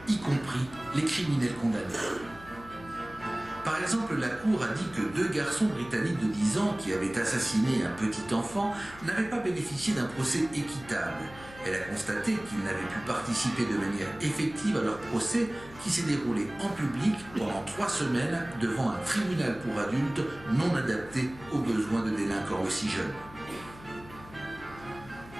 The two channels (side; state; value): left; noise; hum, 18 dB below the sound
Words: y compris les criminels condamnés. Par exemple, la Cour a dit que 2 garçons britanniques de 10 ans qui avaient assassiné un petit enfant n'avaient pas bénéficié d'un procès équitable. Elle a constaté qu'ils n'avaient pu participer de manière effective à leur procès qui s'est déroulé en public pendant 3 semaines devant un tribunal pour adultes non adapté aux besoins de délinquants aussi jeunes.